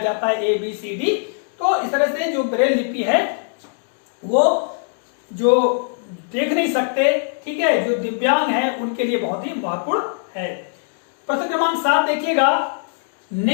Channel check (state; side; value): silent; right; digital silence